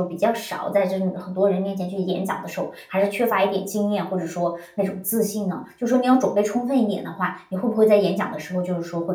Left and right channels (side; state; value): both; identical; correlation 1.00